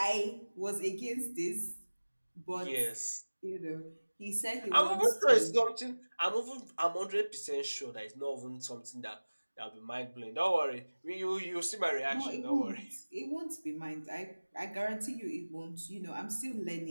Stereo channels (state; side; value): inverted; both; correlation -1.00